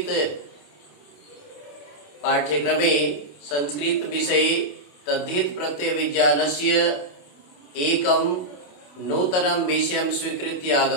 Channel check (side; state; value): right; late; 28 ms